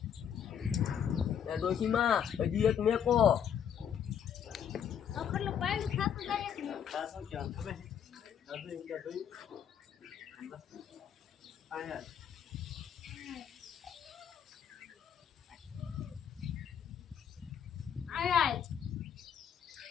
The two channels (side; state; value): right; quieter; 8.4 dB